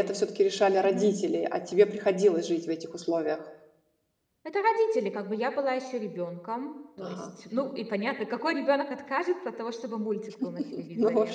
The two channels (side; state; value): both; identical; correlation 1.00